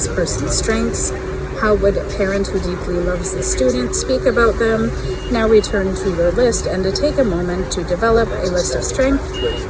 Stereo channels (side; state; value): both; identical; correlation 1.00